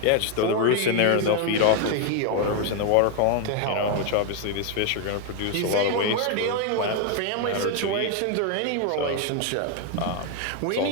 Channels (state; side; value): different; both; correlation 0.01